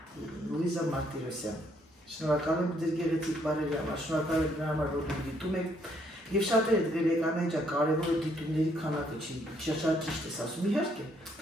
Լուիզա Մարտիրոսյան, շնորհակալ եմ ձեր գեղեցիկ բառերի համար, շնորհակալ եմ նրա համար, որ դիտում եք Եվ շատերը դրել եք Անահիտ կարևորը դիտումների քանակը չի, շատ ճիշտ ես ասում, իհարկե,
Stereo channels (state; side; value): normal; both; correlation 0.69